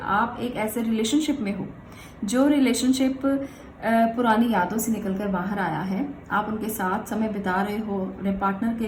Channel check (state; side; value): identical; both; correlation 1.00